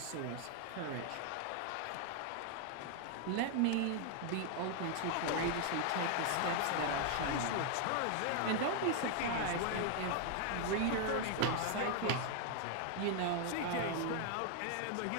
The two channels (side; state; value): both; different; correlation 0.00